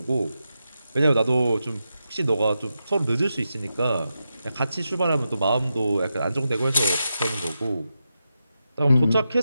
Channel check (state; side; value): inverted; both; correlation -0.88